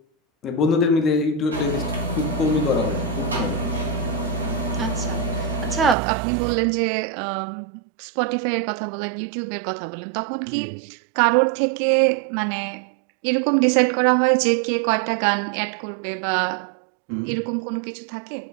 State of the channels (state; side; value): drops out; left; at 6.0 s